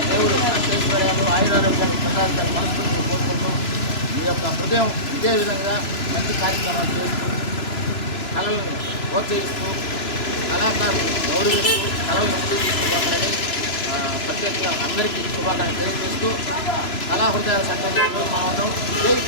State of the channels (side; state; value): right; late; 3.0 ms